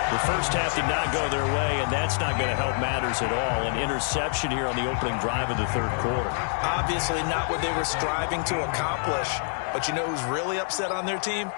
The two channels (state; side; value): silent; right; 60 dB below the other